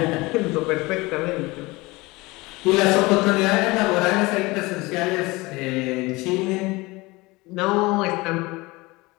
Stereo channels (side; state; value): right; quieter; 22.6 dB